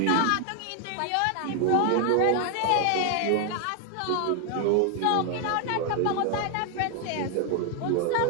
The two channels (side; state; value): both; different; correlation 0.00